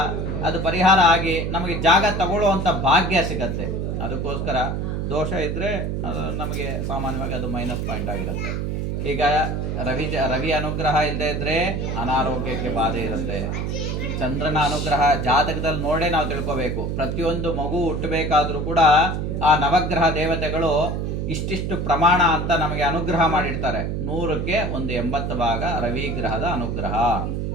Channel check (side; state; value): right; noise; hum, 2 dB below the sound